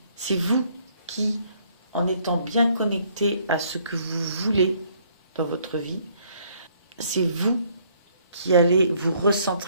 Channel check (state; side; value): inverted; both; correlation -0.65